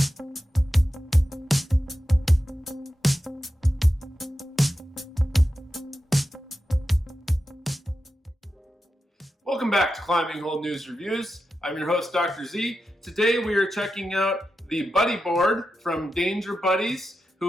back to Climbing Hold News Reviews. I'm your host, Dr. Z. Today we are checking out the Buddy Board from Danger Buddies,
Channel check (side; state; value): both; normal; correlation 0.90